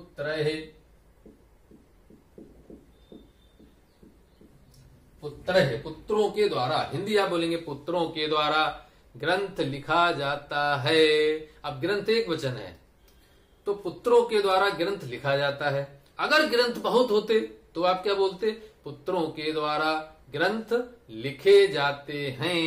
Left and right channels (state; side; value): identical; both; correlation 1.00